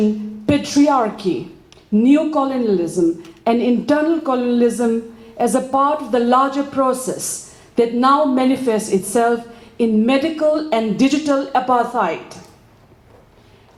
patriarchy, neocolonialism, and internal colonialism as a part of the larger process that now manifests itself in medical and digital apartheid,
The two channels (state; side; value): identical; both; correlation 1.00